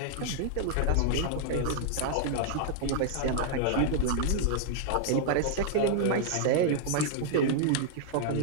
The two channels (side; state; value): both; different; correlation -0.01